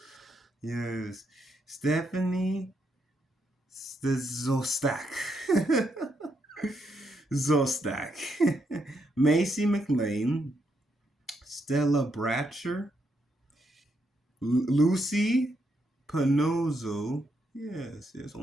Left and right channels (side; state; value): both; normal; correlation 0.78